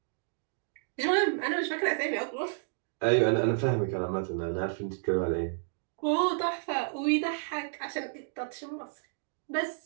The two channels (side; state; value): left; silent; digital silence